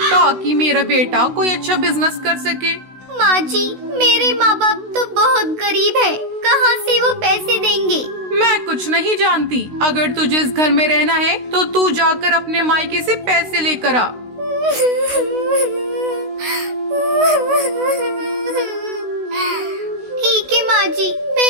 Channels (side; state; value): left; late; 16 ms